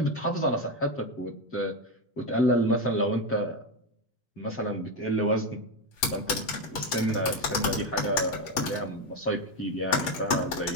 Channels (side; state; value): right; late; 8.3 ms